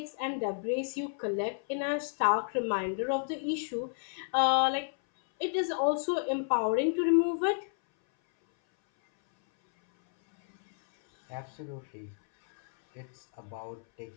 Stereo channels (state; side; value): silent; right; 57 dB below the other